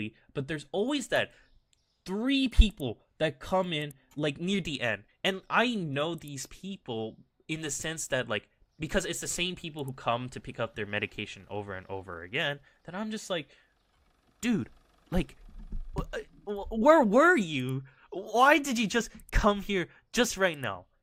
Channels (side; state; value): both; identical; correlation 1.00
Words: but there's always that 3 people that come in like near the end. And I know these people in the sense that, like, because it's the same people who come to pick up their medication over and over again, that I'm just like, dude, like, where were you? Why did you just come here just right now?